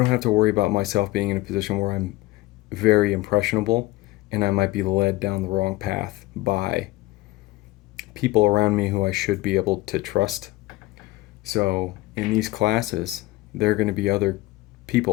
myself being in a position where I'm very impressionable and I might be led down the wrong path by people around me who I should be able to trust. So in these classes, there are going to be other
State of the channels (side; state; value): right; quieter; 19.2 dB